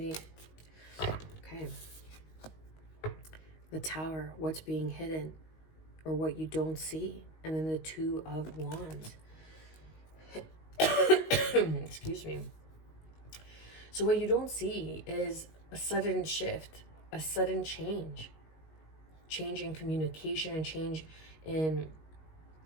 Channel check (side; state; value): right; late; 19 ms